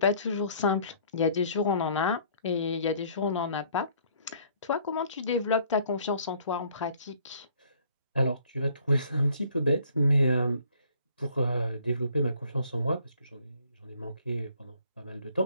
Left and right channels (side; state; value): both; inverted; correlation -0.59